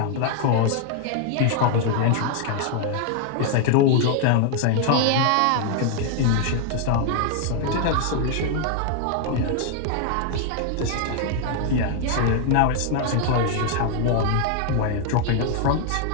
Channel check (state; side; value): different; both; correlation 0.00